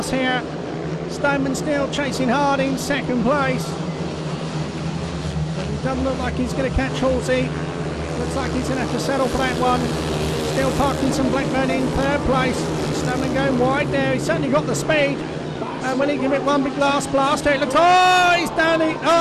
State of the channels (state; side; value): identical; both; correlation 1.00